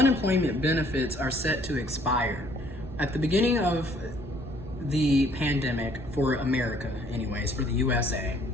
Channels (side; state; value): right; noise; rumble, 14 dB below the sound